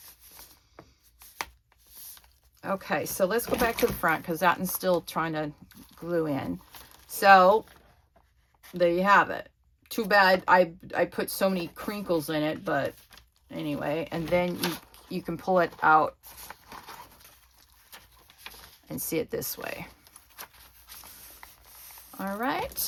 Okay, so let's go back to the front because that one's still trying to glue in. So there you have it. Too bad I put so many crinkles in it, but anyway. And then you can pull it out and see it this way. All right,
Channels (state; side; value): identical; both; correlation 1.00